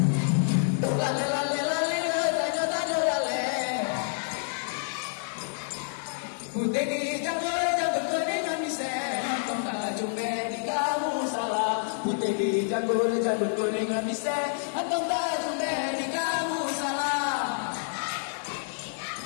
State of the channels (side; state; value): right; silent; digital silence